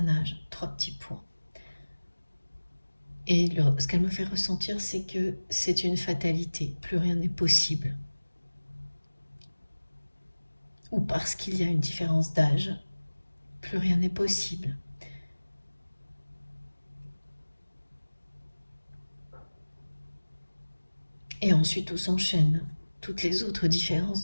âge, 3 petits points. Et ce qu'elle me fait ressentir, c'est que c'est une fatalité, plus rien n'est possible. Ou parce qu'il y a une différence d'âge, plus rien n'est possible. Et ensuite tout s'enchaîne. Toutes les autres différences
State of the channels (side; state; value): both; inverted; correlation -1.00